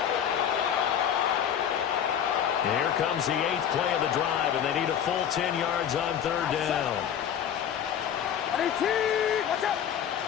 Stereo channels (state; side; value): quieter; right; 9.1 dB